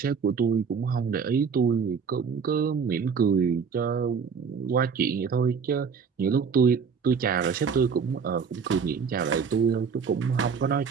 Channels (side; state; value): left; quieter; 6.1 dB